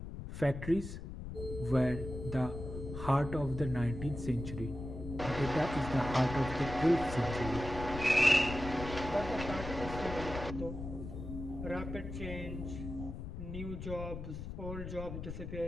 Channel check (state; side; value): noise; left; rumble, 8 dB below the sound